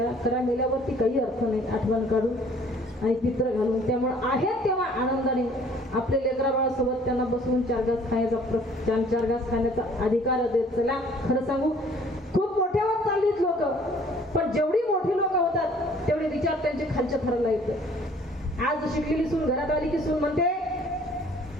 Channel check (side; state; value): both; normal; correlation 0.56